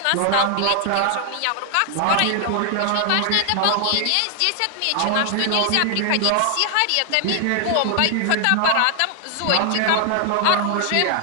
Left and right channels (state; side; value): different; both; correlation 0.00